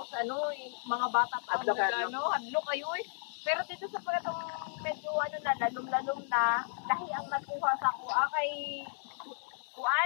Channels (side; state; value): right; silent; 55 dB below the other